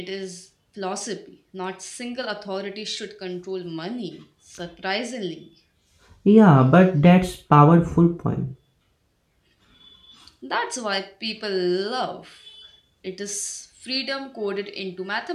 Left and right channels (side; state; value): both; identical; correlation 1.00